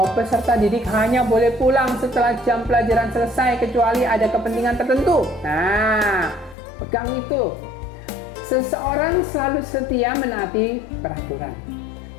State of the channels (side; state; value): right; drops out; at 6.6 s